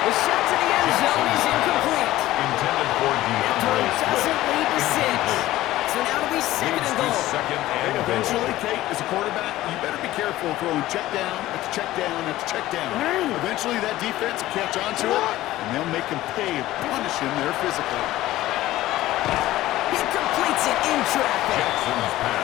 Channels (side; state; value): right; quieter; 15.8 dB